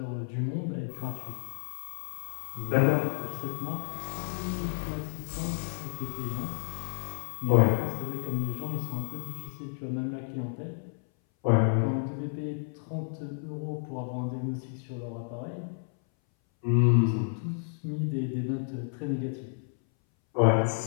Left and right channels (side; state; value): right; silent; 57 dB below the other